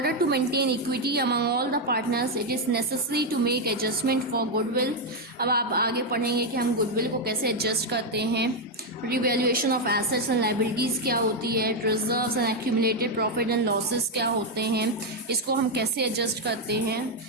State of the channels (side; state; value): both; normal; correlation 0.03